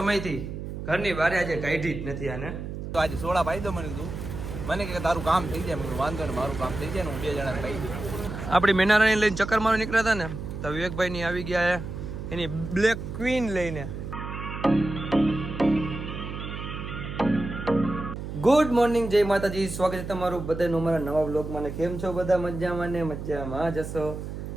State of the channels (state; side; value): noise; right; hum, 7 dB below the sound